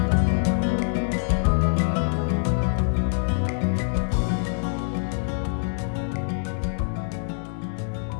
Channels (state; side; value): silent; right; digital silence